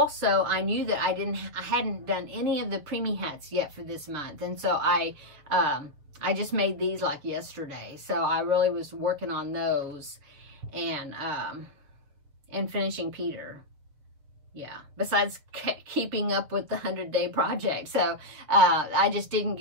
I knew that I hadn't done any of the Preemie hats yet for this month. And so I just made these like yesterday. So I really was working on those and finishing Peter. Yeah, besides keeping up with the 100-day project. So I just didn't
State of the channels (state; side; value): late; left; 7.1 ms